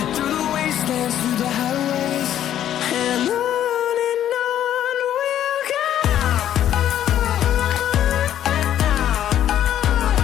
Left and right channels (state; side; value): quieter; right; 11.1 dB